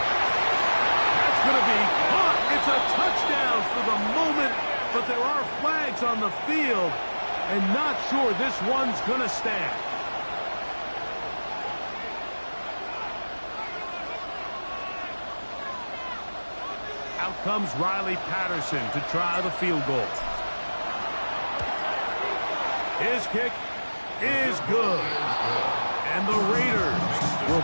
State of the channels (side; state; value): both; inverted; correlation -1.00